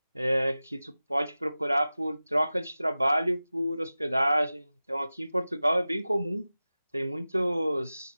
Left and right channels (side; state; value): both; inverted; correlation -0.96